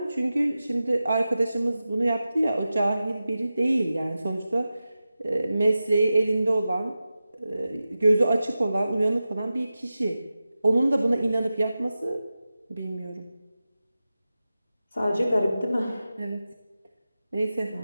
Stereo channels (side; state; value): both; inverted; correlation -0.94